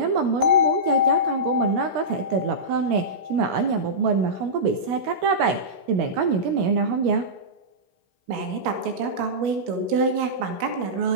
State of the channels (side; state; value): left; late; 17 ms